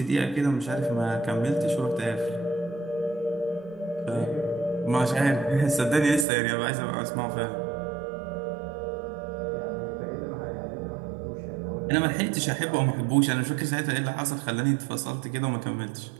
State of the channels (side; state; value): left; drops out; at 6.2 s